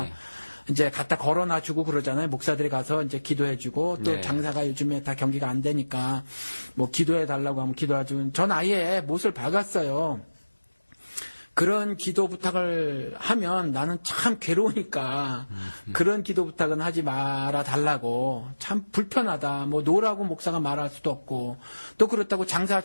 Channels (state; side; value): inverted; both; correlation -1.00